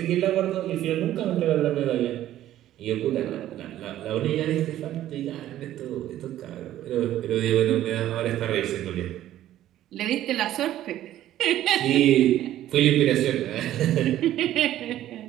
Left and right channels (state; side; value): quieter; left; 13.0 dB